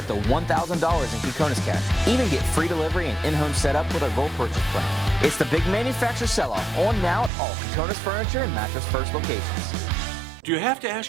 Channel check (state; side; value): drops out; left; at 7.3 s